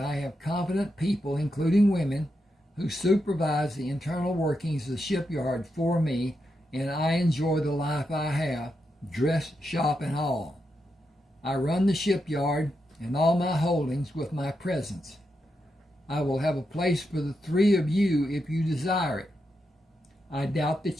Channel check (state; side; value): normal; both; correlation 0.85